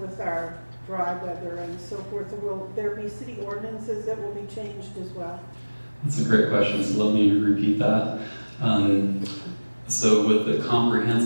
with our dry weather and so forth? Will there be city ordinances that will be changed as well? That's a great question, so let me repeat that. So with the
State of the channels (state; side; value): inverted; both; correlation -1.00